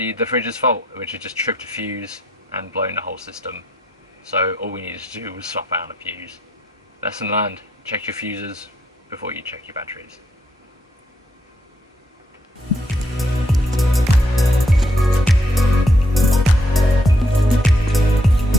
the fridge's fault, which had just tripped a fuse and blown the whole system. So all we needed to do was swap out a fuse. Lesson learned, check your fuses before you check your batteries.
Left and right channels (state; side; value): normal; both; correlation 0.74